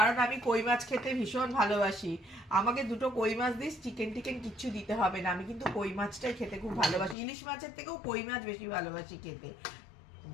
আমি কই মাছ খেতে ভীষণ ভালোবাসি। আমাকে দুটো কই মাছ দিস, চিকেন টিকেন কিচ্ছু দিতে হবে না। আমি কিন্তু কই মাছটাই খেতে খুব ভালোবাসি, ইলিশ মাছের থেকেও কই মাছ বেশি ভালোবাসি খেতে।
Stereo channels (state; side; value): drops out; right; at 7.2 s